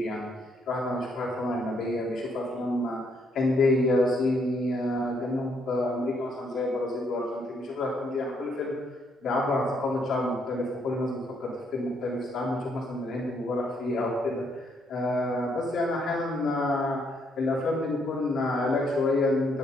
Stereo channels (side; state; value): both; normal; correlation 0.72